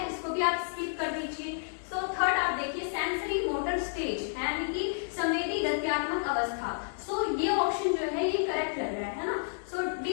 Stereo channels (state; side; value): silent; right; digital silence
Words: इसको भी आप स्किप कर दीजिए। थर्ड आप देखिए सेंसरी मोटर स्टेज, यानी कि संवेदी गत्यात्मक अवस्था। ये ऑप्शन जो है ये करेक्ट लग रहा है ना। डी